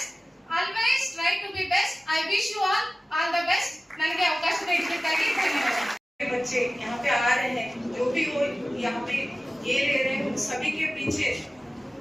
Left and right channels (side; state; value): both; normal; correlation 0.96